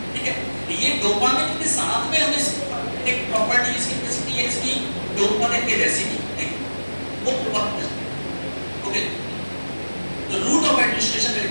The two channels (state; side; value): inverted; both; correlation -1.00